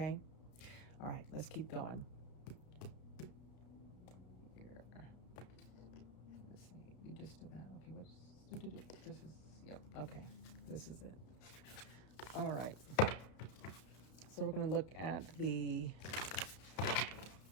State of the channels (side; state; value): right; late; 32 ms